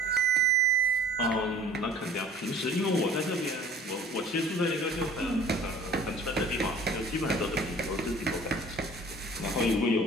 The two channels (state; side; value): normal; both; correlation 0.49